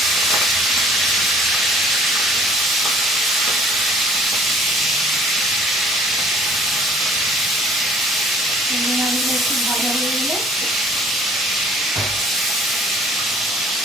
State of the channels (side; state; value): both; normal; correlation 0.54